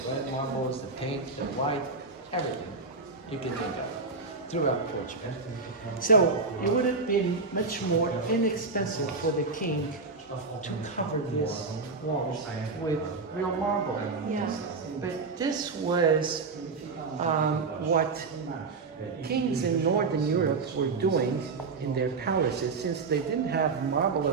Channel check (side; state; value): left; quieter; 4.2 dB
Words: red marbles, the pink, the white, everything you can think of throughout Portugal. So it would have been much more inexpensive for the king to cover these walls with real marble. Yes. But this was what kings in Northern Europe were doing in their palaces. Since they didn't have marble